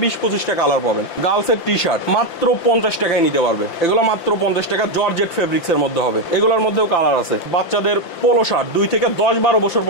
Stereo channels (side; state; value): right; late; 5.8 ms